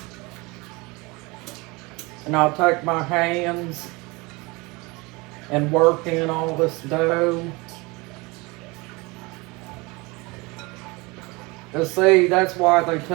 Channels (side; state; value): left; quieter; 25.2 dB